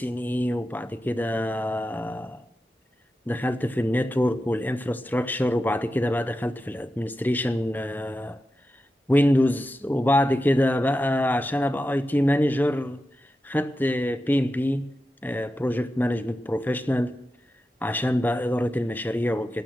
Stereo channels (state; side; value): normal; both; correlation 0.90